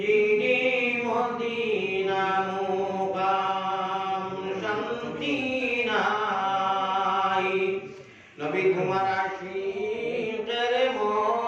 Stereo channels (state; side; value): identical; both; correlation 1.00